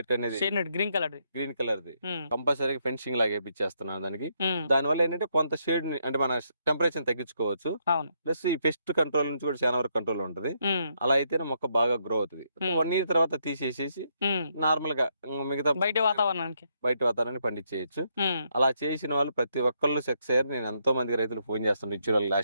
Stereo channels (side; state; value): both; inverted; correlation -0.76